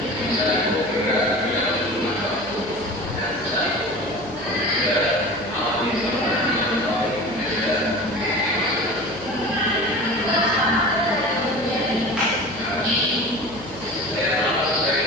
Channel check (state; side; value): noise; left; hum, 17 dB below the sound